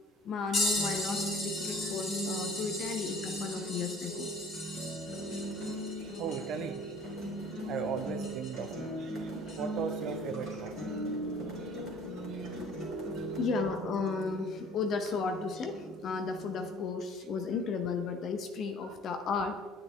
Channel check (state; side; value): normal; both; correlation 0.50